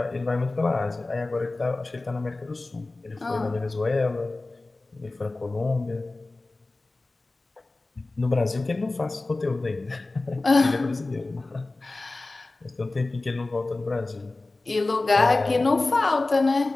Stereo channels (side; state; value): right; quieter; 3.2 dB